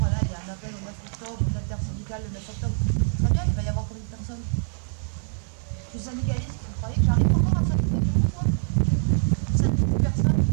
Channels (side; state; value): left; silent; digital silence